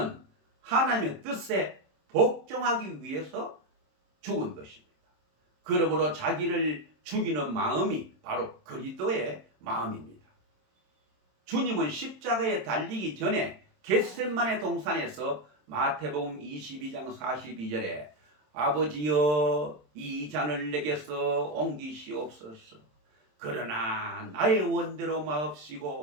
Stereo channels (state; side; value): late; left; 27 ms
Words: 하나님의 뜻에 복종하기 위해서 죽은 것입니다. 그러므로 자기를 죽이는 마음이 바로 그리스도의 마음입니다. 주님은 십자가에 달리기 전에 겟세마네 동산에서 마태복음 22장 42절에 아버지여 이 잔을 내게서 옮기시옵소서. 그러나 나의 원대로